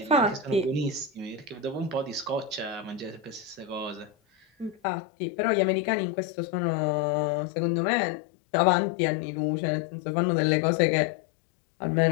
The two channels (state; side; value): drops out; right; at 4.8 s